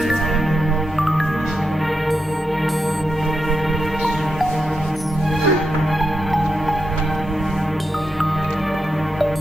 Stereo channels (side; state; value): both; normal; correlation 0.86